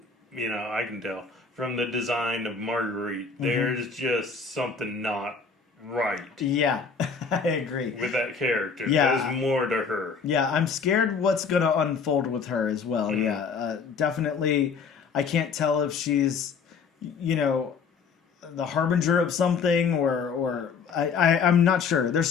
tell from the design of Marguerite. There's just something not right. Yeah, I agree. With that character. Yeah. There's more to her. Yeah, I'm scared what's going to unfold with her as well. Yeah, definitely. I can't tell if she's, the harbinger of something or I'm not sure. There's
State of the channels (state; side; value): quieter; right; 5.5 dB